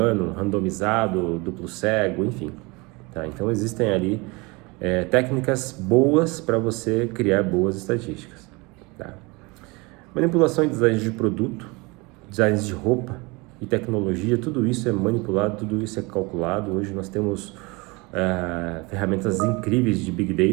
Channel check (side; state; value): left; quieter; 26.2 dB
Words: randomizado, duplo cego, enfim, tá? Então existem ali técnicas boas para você criar boas estatísticas, tá? Manipulação em design de produto, designs de roupa e tecnologia, tudo isso é manipulado, tudo isso é calculado. Hoje nós temos ferramentas incríveis de Big